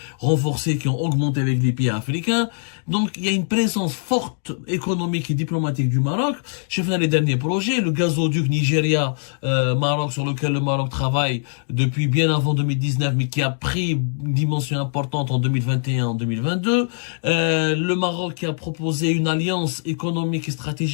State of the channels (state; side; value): silent; right; digital silence